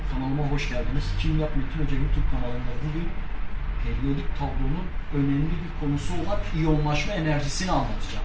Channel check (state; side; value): identical; both; correlation 1.00